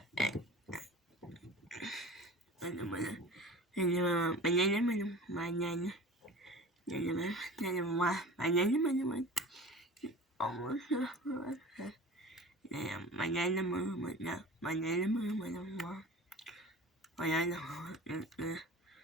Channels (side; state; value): both; normal; correlation 0.39